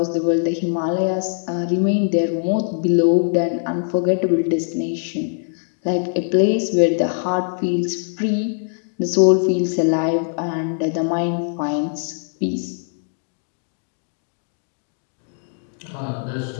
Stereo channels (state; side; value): silent; right; digital silence